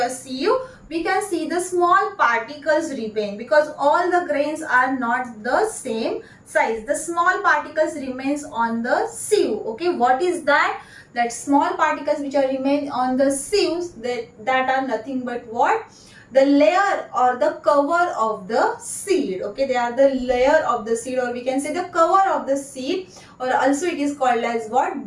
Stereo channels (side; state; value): both; identical; correlation 1.00